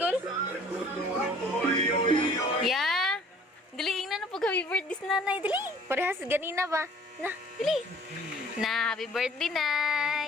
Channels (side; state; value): both; normal; correlation 0.53